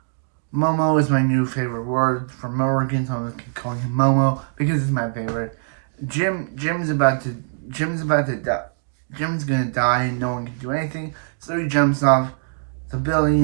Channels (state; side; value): silent; left; digital silence